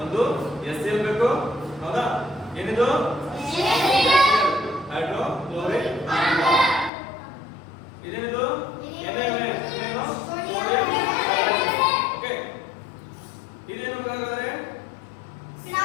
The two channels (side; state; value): right; drops out; at 6.9 s